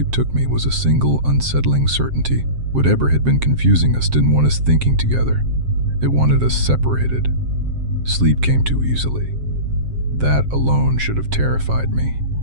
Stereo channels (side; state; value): left; late; 7.6 ms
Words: took me was a single, unsettling certainty. Whatever had been confusing us didn't want us thinking together. It wanted us separated. Sleep came too easily. That alone should have terrified me.